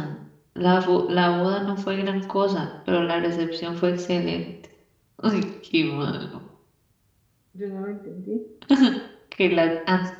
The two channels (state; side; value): identical; both; correlation 1.00